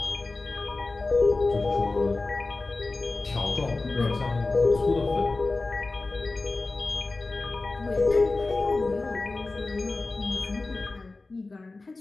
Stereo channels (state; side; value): quieter; right; 3.4 dB